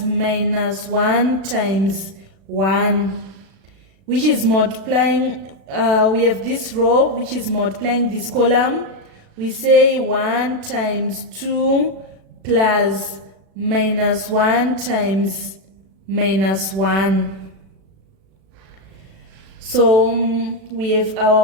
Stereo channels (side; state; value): left; late; 36 ms